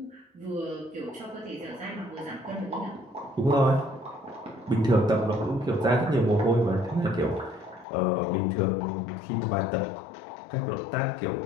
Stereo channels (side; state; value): right; drops out; at 7.9 s